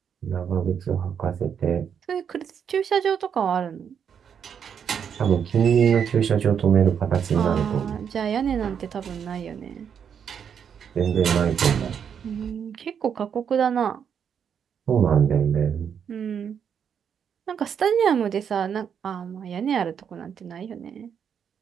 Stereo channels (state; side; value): quieter; left; 7.7 dB